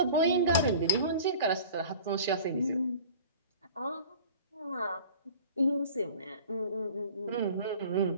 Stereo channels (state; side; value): inverted; both; correlation -0.44